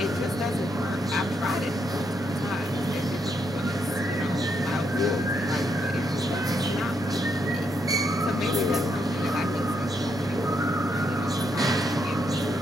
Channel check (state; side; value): normal; both; correlation 0.77